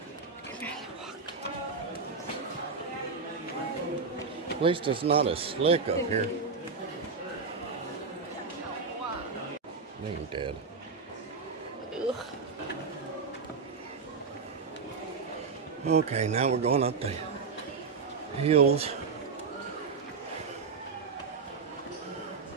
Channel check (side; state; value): left; quieter; 5.0 dB